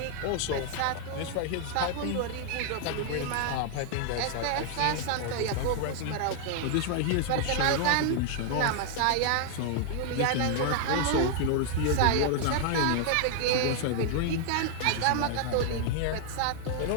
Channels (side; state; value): both; different; correlation 0.00